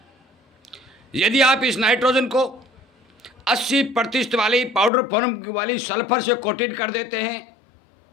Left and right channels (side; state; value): right; drops out; at 4.9 s